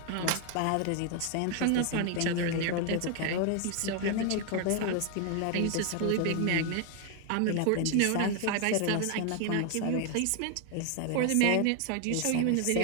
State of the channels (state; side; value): different; both; correlation 0.01